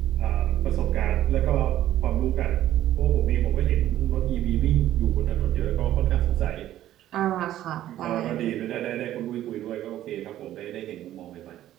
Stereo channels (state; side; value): quieter; left; 13.0 dB